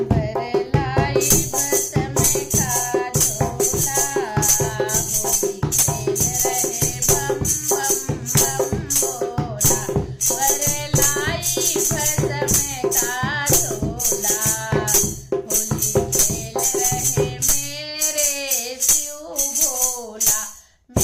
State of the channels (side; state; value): both; identical; correlation 1.00